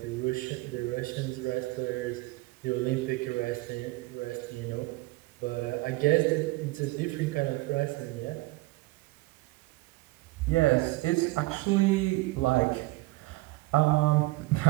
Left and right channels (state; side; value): quieter; left; 21.0 dB